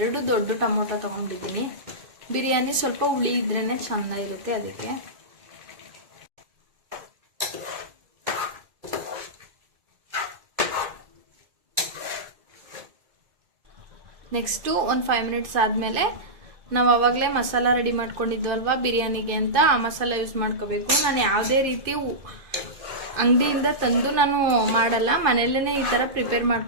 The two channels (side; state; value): left; late; 2.5 ms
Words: 2 ದೊಡ್ಡ ಟೊಮೊಟೊ ತಗೊಂಡಿದ್ದೀನಿ. ಬಿರಿಯಾನಿ ಸ್ವಲ್ಪ ಹುಳಿ ಇದ್ರೇನೆ ಚೆನ್ನಾಗಿರುತ್ತೆ, ಅದಕ್ಕೆ. ನೆಕ್ಸ್ಟು ಒಂದು 5 ಮಿನಿಟ್ಸ್ ಆದಮೇಲೆ ನಾವು ಆವಾಗಲೇ ಮಸಾಲ ರೆಡಿ ಮಾಡ್ಕೊಂಡಿದ್ವಲ್ವಾ ಬಿರಿಯಾನಿಗೆ ಅಂತ, ಆ ಮಸಾಲ ಯೂಸ್ ಮಾಡ್ಕೋಬೇಕು. ನಾನು ಯಾವುದೇ ರೀತಿ ಅಂಗಡಿಯಿಂದ ತಂದು ನಾನು ಮಾಡಲ್ಲ, ಮನೆಯಲ್ಲೇ ಈ ಥರ ಪ್ರಿಪೇರ್